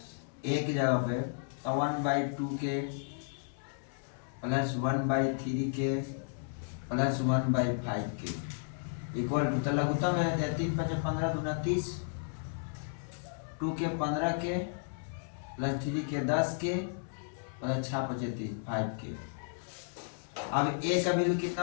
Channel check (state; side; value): silent; right; 55 dB below the other